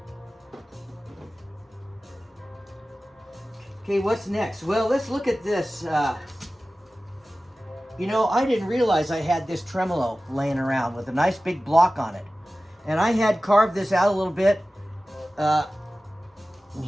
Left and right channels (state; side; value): normal; both; correlation 0.96